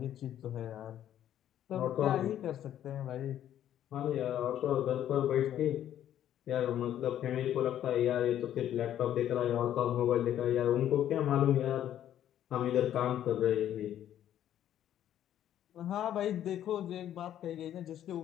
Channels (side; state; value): right; quieter; 11.2 dB